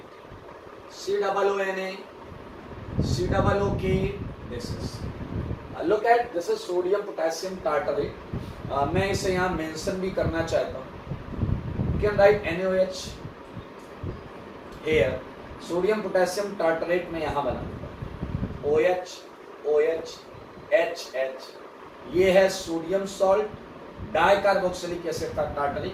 COONA, COOK, this is look at this is sodium potassium tartarate। मैं इसे यहाँ मेंशन भी करना चाहता हूँ। You can write NaOH here, sodium potassium tartrate में यहाँ बना OH OH HH, ये है सोडियम सॉल्ट डाइकार्बोक्सिलिक एसिड का टार्टरेट,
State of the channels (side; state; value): both; identical; correlation 1.00